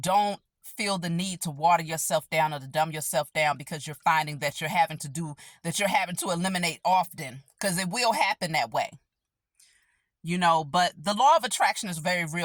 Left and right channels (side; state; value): both; identical; correlation 1.00